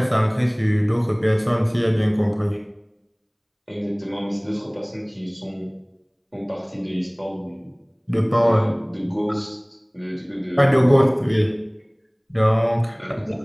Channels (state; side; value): identical; both; correlation 1.00